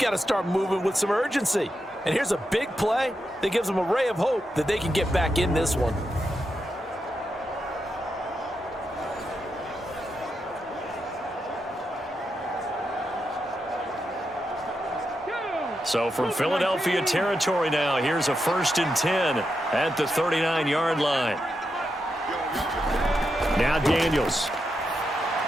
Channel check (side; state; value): both; normal; correlation 0.85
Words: to start moving with some urgency. And here's a big play that gives them a ray of hope that they can get back in this one. So from Philadelphia territory now, here's a 1st and 10 at the 39-yard line. Now Daniels.